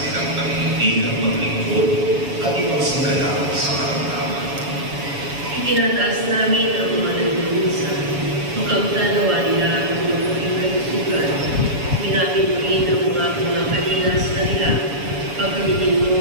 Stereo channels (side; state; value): left; late; 7.1 ms